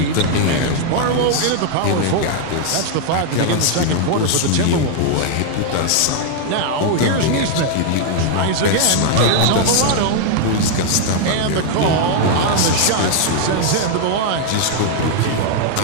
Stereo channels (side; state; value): both; different; correlation -0.01